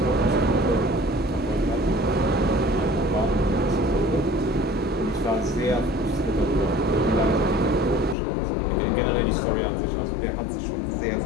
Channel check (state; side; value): drops out; right; at 8.2 s